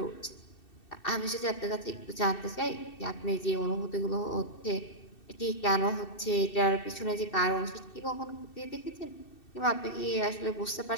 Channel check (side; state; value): right; late; 2.7 ms